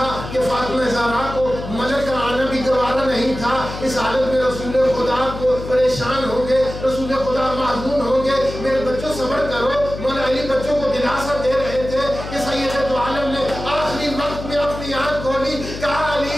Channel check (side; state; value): left; noise; hum, 9 dB below the sound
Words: کہ فاطمہ زہرا کو ملک کا آنا بھی گوارا نہیں تھا؟ اس حالت میں رسول خدا کو پریشان ہوں گے، رسول خدا محزون ہوں گے. میرے بچوں صبر کرو. مولا علی بچوں کو دلاسا دے رہے تھے کہ سید دو عالم نے آخری وقت میں اپنی آنکھ کھولی، کہا